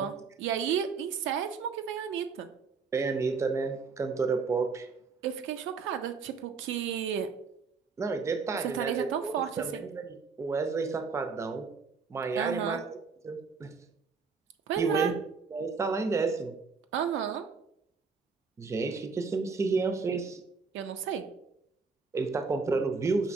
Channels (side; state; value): left; quieter; 5.0 dB